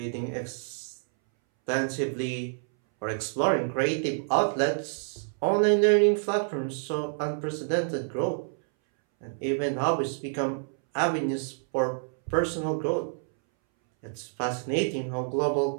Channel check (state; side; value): silent; left; 59 dB below the other